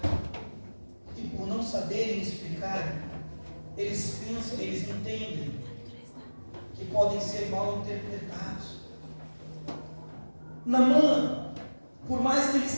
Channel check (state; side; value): inverted; both; correlation -1.00